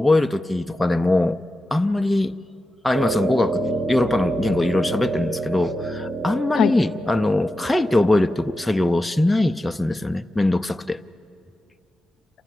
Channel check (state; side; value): normal; both; correlation 0.91